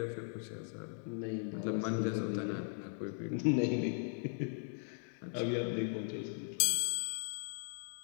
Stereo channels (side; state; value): right; silent; digital silence